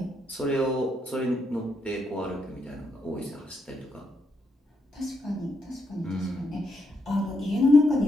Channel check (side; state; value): both; normal; correlation 0.79